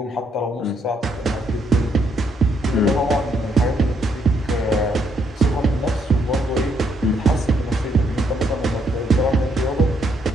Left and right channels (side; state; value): both; normal; correlation 0.73